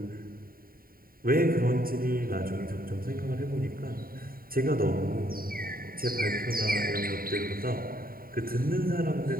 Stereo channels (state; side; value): late; left; 0.43 ms